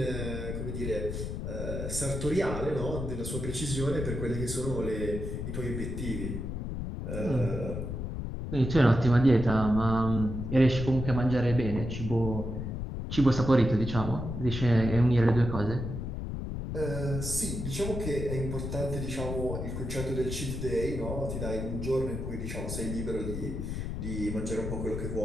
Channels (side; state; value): left; noise; rumble, 4 dB below the sound